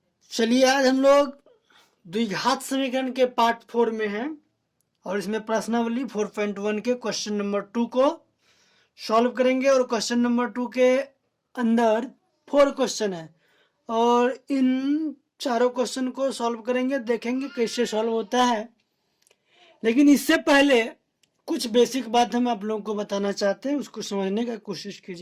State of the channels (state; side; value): identical; both; correlation 1.00